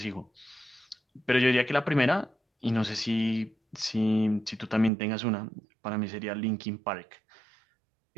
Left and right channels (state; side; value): drops out; left; at 4.9 s